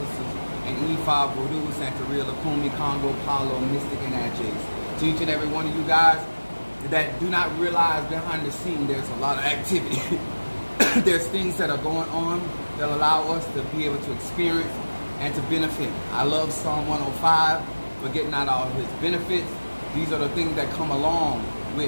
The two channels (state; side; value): inverted; both; correlation -1.00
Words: in E5, Voodoo, Santeria, Lukumi, Congo, Palo, Mystic, and Adjays. To each and every one of you guys that do not realize behind the scene there's a lot of activity. There's things that are going on that allow us to be able to experience and to benefit. I love Psalm 105, forgetting not all his benefits. These are the things that come along